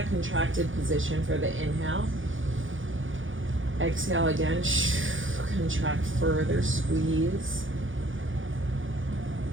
contracted position for the inhale. Exhale again, contract further, squeeze.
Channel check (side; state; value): left; late; 0.57 ms